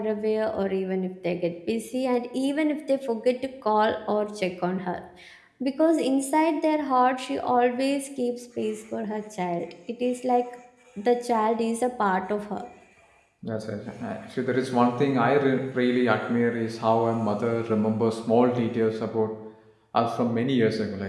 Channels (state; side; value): identical; both; correlation 1.00